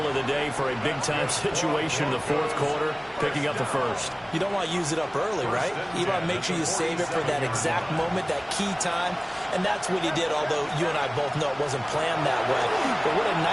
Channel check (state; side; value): identical; both; correlation 1.00